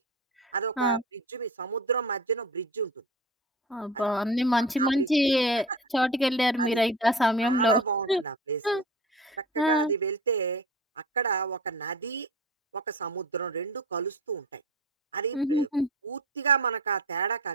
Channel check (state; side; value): normal; both; correlation 0.34